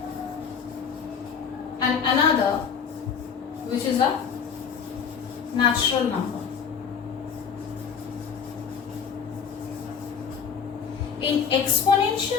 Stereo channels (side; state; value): right; quieter; 6.8 dB